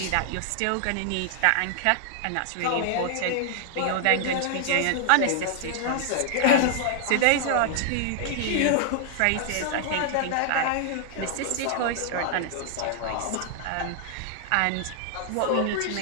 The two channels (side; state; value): both; different; correlation -0.01